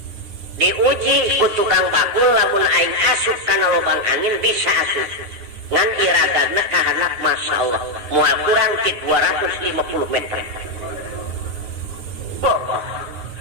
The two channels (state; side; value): late; left; 9.5 ms